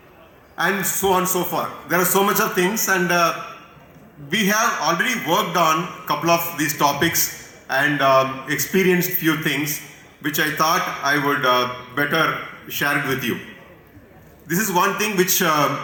and so on and so forth. There are so much of things, and we have already worked on a couple of these topics and experienced few things which I thought I would better share it with you. This is one thing which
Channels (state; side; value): identical; both; correlation 1.00